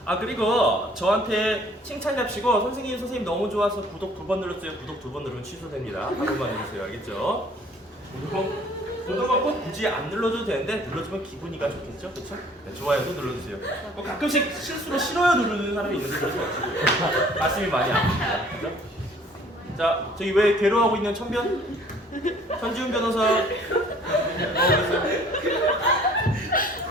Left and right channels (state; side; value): normal; both; correlation 0.55